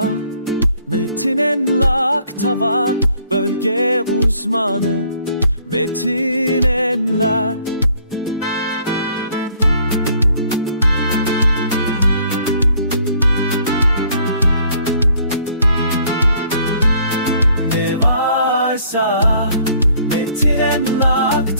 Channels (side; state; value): both; inverted; correlation -0.61